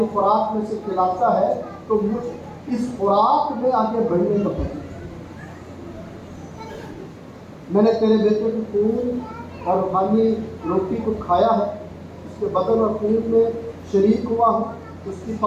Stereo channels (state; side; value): identical; both; correlation 1.00